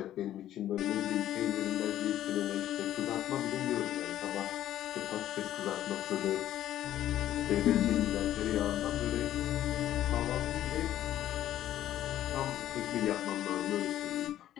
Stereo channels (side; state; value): right; quieter; 12.5 dB